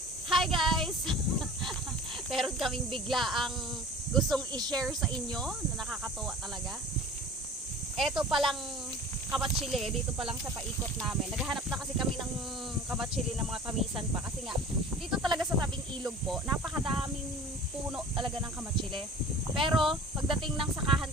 Hi guys! Meron kaming bigla ang gustong i-share sa inyo na nakakatuwa talaga. Eto palang kamatsili, dito pa lang sa paikot namin. Naghahanap na kasi kami ng kamatsili ng mga tamisan pa. Kasi nga, dito talaga sa tabing ilog po, napakadaming puno talaga ng kamatsili. Pero, pagdating ng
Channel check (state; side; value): normal; both; correlation 0.42